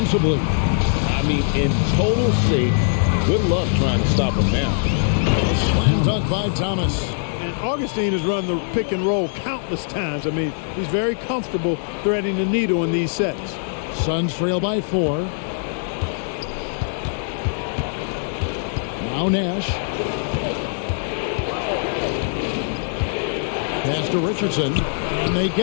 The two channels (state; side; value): silent; right; digital silence